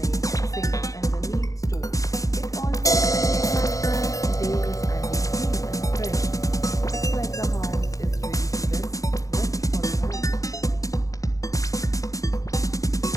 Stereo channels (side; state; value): right; late; 0.16 ms